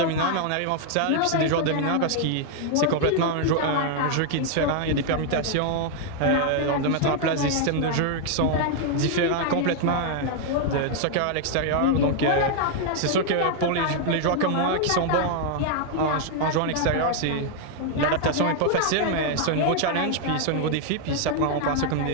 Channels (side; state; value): both; different; correlation 0.00